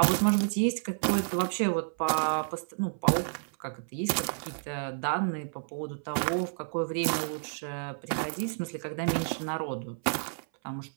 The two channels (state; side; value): silent; left; 58 dB below the other